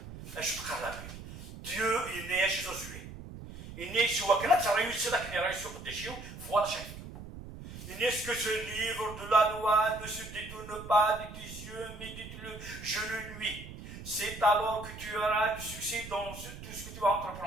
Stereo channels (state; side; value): noise; right; rumble, 12 dB below the sound